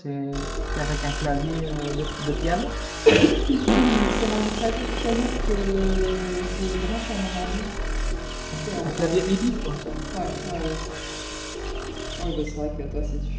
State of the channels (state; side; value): identical; both; correlation 1.00